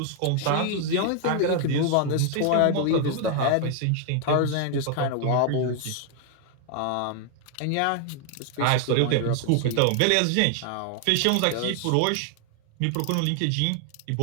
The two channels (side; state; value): both; different; correlation 0.00